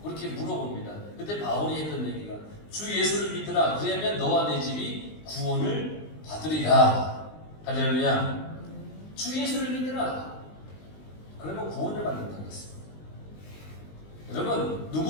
그렇게 물어봅니다. 그때 바울이 했던 얘기가 주 예수를 믿으라. 그러면 너와 내 집이 구원을 받으리라. 할렐루야. 주 예수를 믿으라. 그러면 구원을 받는다고 했습니다. 여러분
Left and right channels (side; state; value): right; late; 20 ms